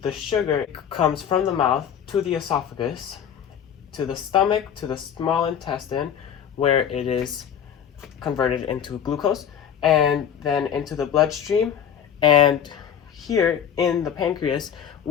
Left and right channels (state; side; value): quieter; right; 8.6 dB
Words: the sugar comes from the mouth to the esophagus, to the stomach, to the small intestine, where it is converted into glucose, and then into the bloodstream, and here in the pancreas,